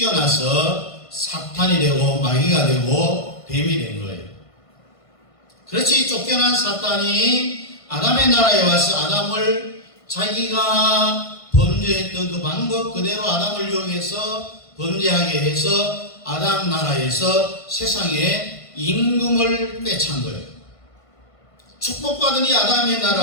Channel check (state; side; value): late; right; 1.5 ms